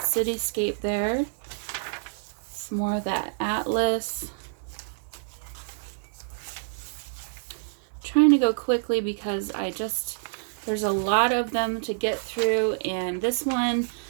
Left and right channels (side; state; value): left; silent; digital silence